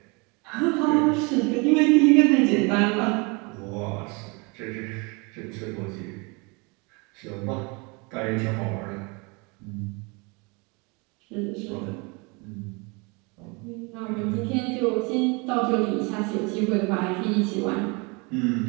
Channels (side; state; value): left; quieter; 29.3 dB